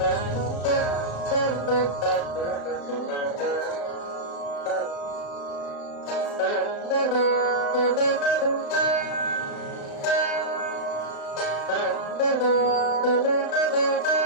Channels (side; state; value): right; late; 35 ms